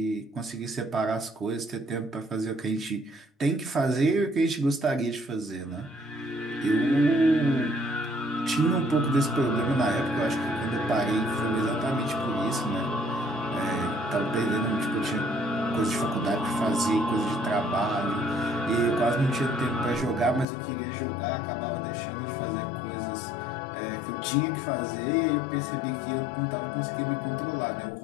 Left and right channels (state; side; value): drops out; right; at 20.5 s